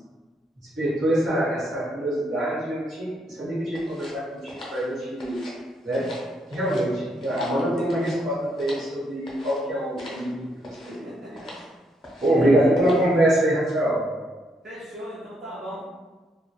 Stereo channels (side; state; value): both; normal; correlation 0.74